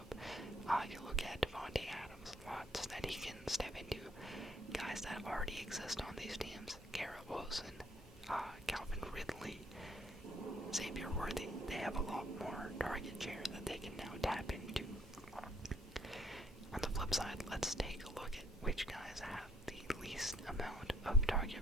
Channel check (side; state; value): both; normal; correlation 0.66